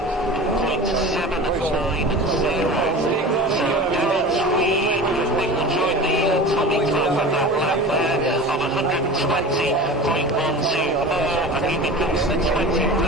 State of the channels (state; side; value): normal; both; correlation 0.35